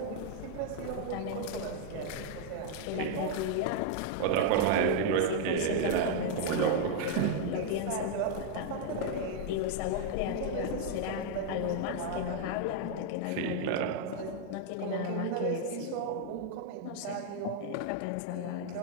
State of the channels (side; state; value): both; different; correlation 0.00